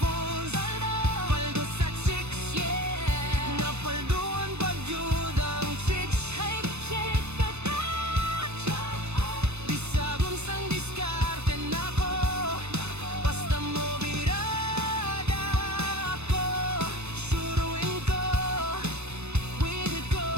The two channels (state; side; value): late; left; 0.81 ms